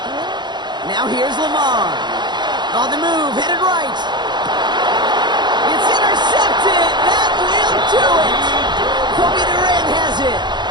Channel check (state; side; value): late; left; 0.21 ms